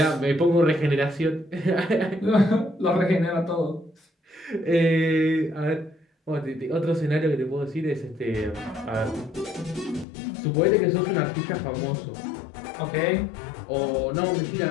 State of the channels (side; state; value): right; drops out; at 10.1 s